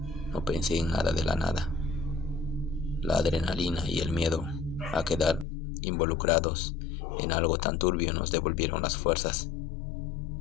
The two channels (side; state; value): right; drops out; at 5.5 s